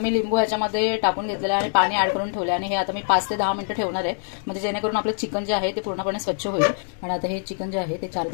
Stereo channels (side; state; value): right; silent; digital silence